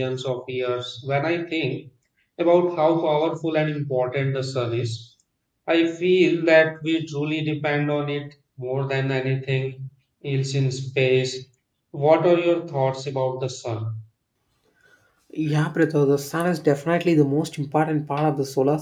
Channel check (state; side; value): identical; both; correlation 1.00